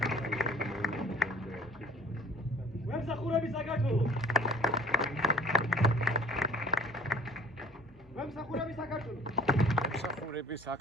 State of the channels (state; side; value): normal; both; correlation 0.50